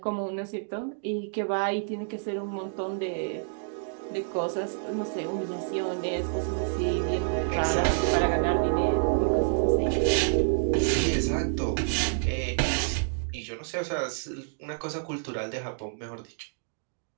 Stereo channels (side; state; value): left; silent; digital silence